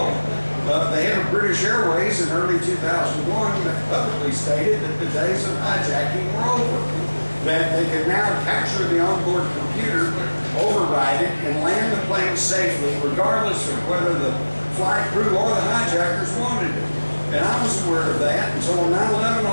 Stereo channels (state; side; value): inverted; both; correlation -1.00